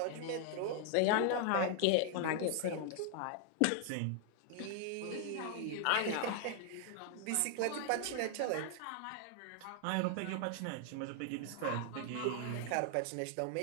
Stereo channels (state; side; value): different; both; correlation 0.00